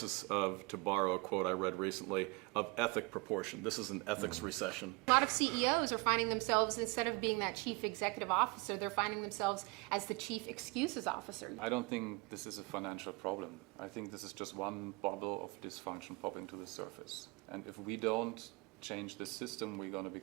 of, to borrow a quote I read recently, of ethic proportion. This is an ethics recession. A lot of CEOs are finding themselves, instead of being that chief executive officer, they're finding themselves as the chief excuses officer. I don't think this is a financial problem. I think this is just one bubble of dysfunction popping to the surface. And if we don't change the system, we're going to be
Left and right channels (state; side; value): quieter; left; 25.7 dB